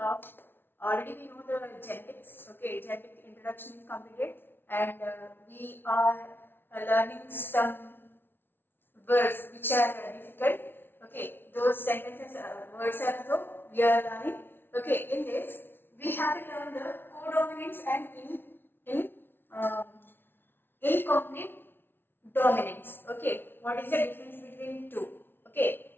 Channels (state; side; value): late; right; 0.11 ms